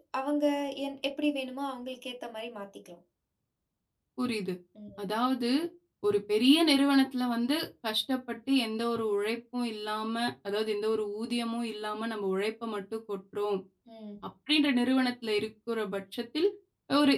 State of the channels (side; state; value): both; identical; correlation 1.00